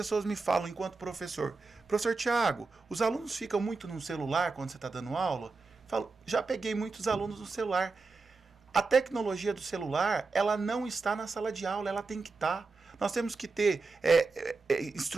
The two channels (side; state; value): left; quieter; 4.0 dB